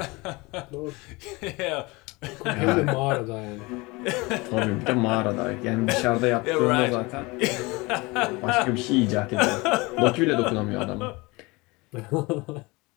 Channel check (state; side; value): quieter; right; 24.2 dB